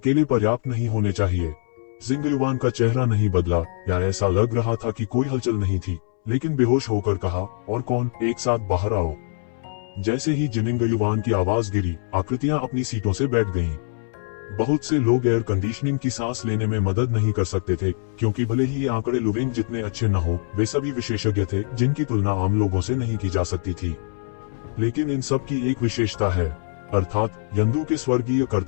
पर्याप्त नहीं होने चाहिए। जिनिंग युवान का चेहरा नहीं बदला, या ऐसा लग रहा था कि कोई हलचल नहीं थी, लेकिन बेहोश होकर कहा, और कौन, एक साथ बाहर आओ। जैसे ही जिनिंग युवान की आवाज गिरी, आकृतियां अपनी सीटों से बैठ गईं। बहुत से लोग एयर कंडीशनिंग की सांस लेने में मदद नहीं कर सकते थे, क्योंकि भले ही ये आंकड़े लुविंग जितने अच्छे न हो, वे सभी विशेषज्ञ थे जिनकी तुलना आम लोगों से नहीं की जा सकती थी। लेकिन इन सब की एक विशेषता है, अर्थात यंदू के स्वर्गीय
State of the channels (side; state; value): right; silent; 63 dB below the other